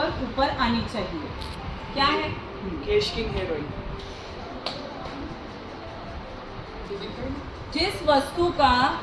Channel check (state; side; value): identical; both; correlation 1.00